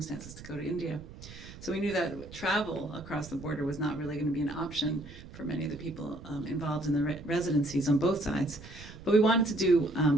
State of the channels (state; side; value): noise; right; rumble, 16 dB below the sound